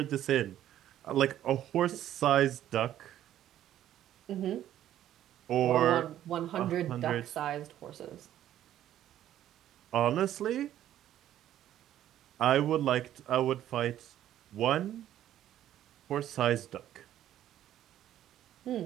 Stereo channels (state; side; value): quieter; left; 12.0 dB